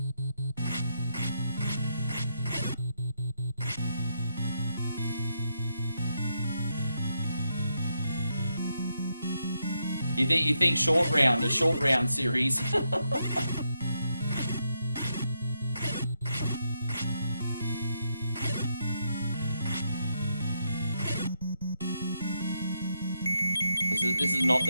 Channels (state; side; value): inverted; both; correlation -0.81